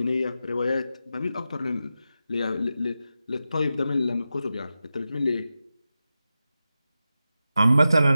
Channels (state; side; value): inverted; both; correlation -0.92